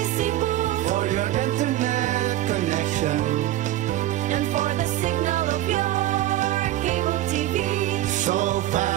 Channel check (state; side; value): quieter; left; 14.2 dB